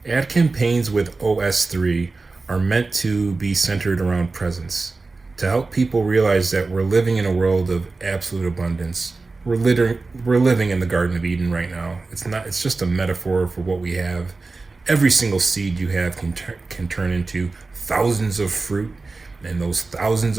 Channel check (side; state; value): left; quieter; 3.8 dB